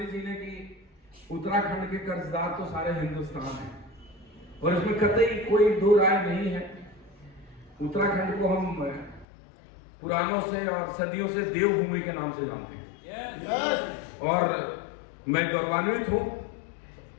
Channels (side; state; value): right; drops out; at 9.2 s